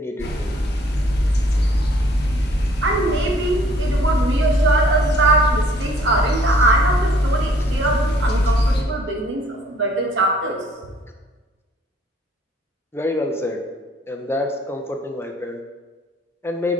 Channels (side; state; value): both; normal; correlation 0.60